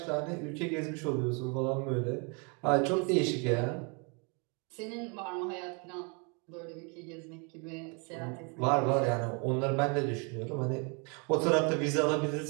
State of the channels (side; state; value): left; quieter; 34.2 dB